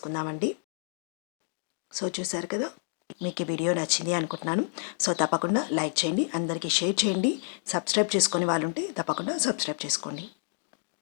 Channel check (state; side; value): silent; right; digital silence